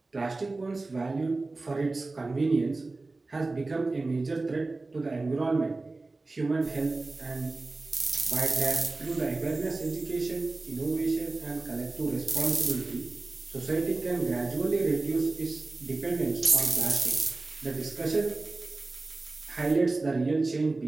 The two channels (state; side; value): quieter; left; 3.4 dB